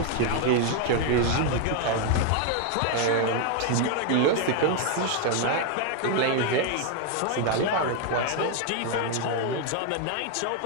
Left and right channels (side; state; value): both; different; correlation 0.00